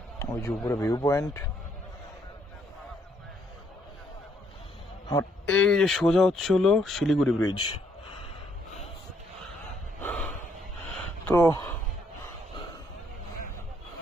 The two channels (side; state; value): both; normal; correlation 0.70